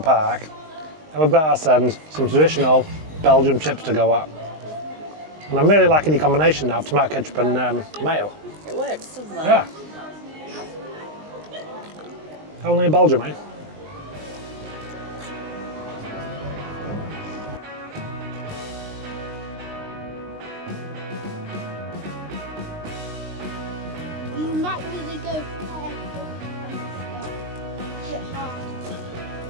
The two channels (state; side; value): late; left; 19 ms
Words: and we've got ourselves some traditional Belgian chips to go at. And I'm really liking the combination now of tomato ketchup and mayo. It works, doesn't it? Yeah. Only in Belgium, eh? You might really go careful and stuff. Get hard.